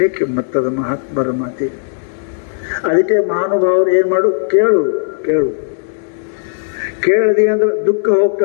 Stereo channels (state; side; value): silent; right; digital silence